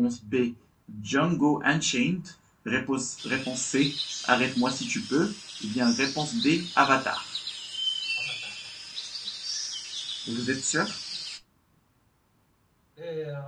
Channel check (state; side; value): identical; both; correlation 1.00